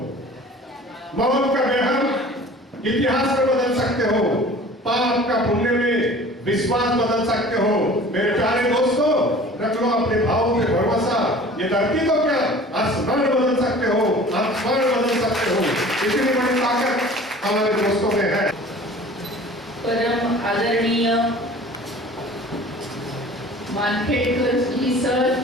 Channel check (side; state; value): both; normal; correlation 0.45